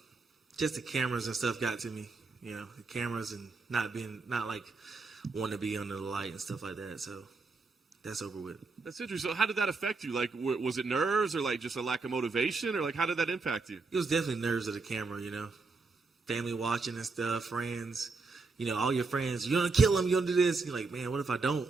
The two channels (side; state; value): left; quieter; 4.0 dB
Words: just the cameras and stuff got to me. The cameras and not like wanting to be under the light and stuff like that. So that's over with. That's interesting. So how did that affect you? Like, was it nerves or like just a lack of motivation, or like how did that impact you? It was definitely nerves of the camera, family watching and stuff, friends, all your friends. You're gonna kill him. You're gonna do this. You're like, man, what if I don't?